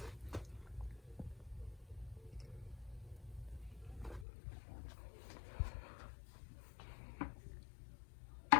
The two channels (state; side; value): drops out; right; at 4.2 s